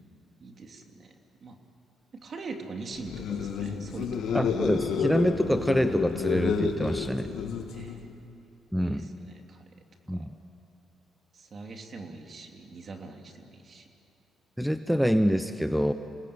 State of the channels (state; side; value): normal; both; correlation 0.89